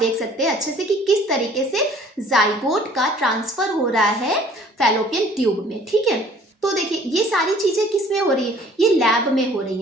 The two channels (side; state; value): both; normal; correlation 0.54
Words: सकते हैं अच्छे से कि किस तरीके से जाइगोट का ट्रांसफर हो रहा है फैलोपियन ट्यूब में। ठीक है, तो तो देखिए ये सारी चीजें किस में हो रही है, ये लैब में हो रही